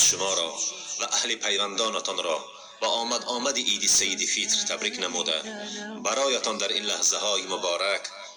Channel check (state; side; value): identical; both; correlation 1.00